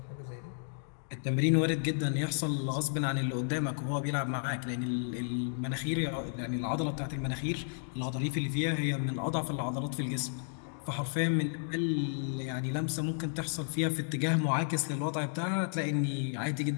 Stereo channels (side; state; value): right; silent; digital silence